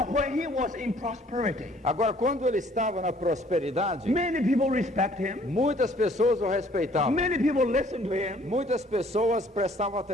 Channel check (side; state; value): both; normal; correlation 0.58